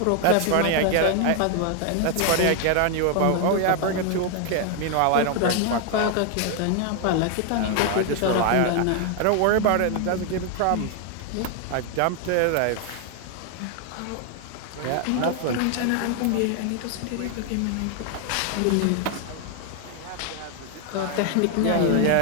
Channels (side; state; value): both; different; correlation 0.00